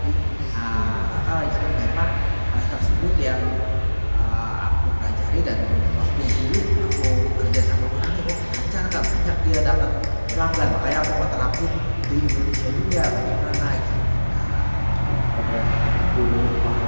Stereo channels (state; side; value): inverted; both; correlation -1.00